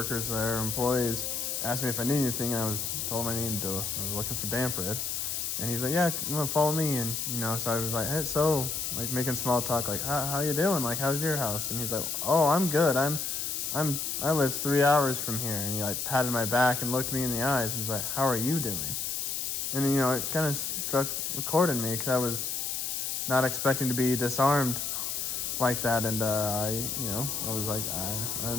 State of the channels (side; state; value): left; noise; hiss, 2 dB below the sound